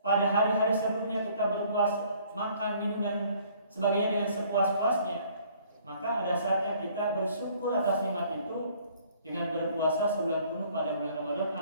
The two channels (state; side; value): inverted; both; correlation -0.59